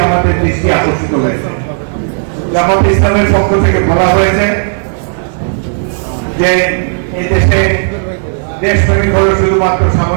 আমাদের দৃষ্টি আকর্ষিত হয়েছে। জামাত ইসলামের পক্ষ থেকে বলা হয়েছে যে এই দেশে দেশপ্রেমিক হল শুধুমাত্র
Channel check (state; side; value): silent; left; digital silence